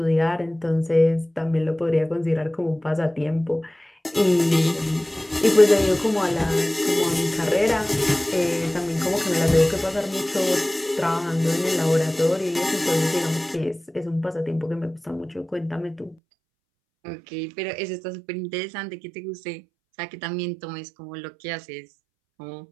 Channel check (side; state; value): left; drops out; at 16.2 s